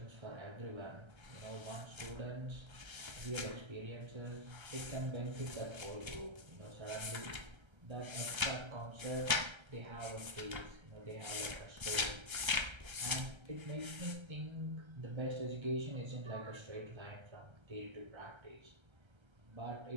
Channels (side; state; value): left; late; 1.3 ms